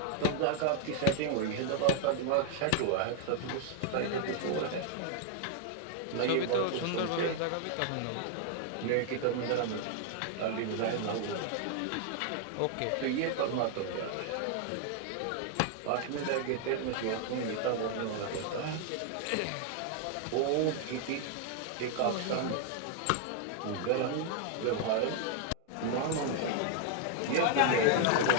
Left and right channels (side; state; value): both; different; correlation 0.00